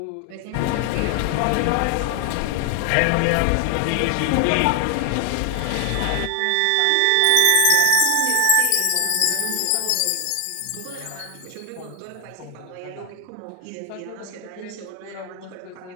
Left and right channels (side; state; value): both; different; correlation 0.00